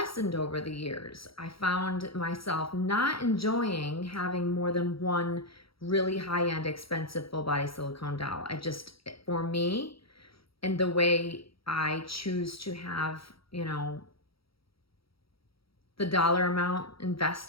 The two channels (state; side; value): late; right; 0.75 ms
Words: over the years. I found myself not enjoying having more than one really high-end expensive full body silicone doll. For me, and the way I choose to have, the dollar amount